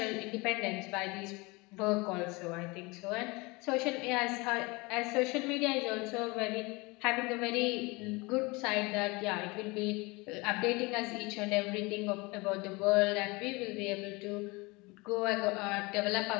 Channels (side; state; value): right; quieter; 25.2 dB